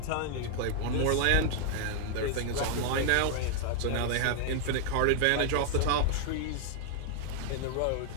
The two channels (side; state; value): both; different; correlation 0.00